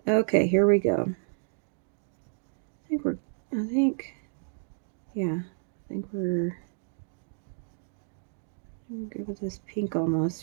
Okay, here we go. I think we're good with this pink almost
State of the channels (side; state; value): left; silent; 58 dB below the other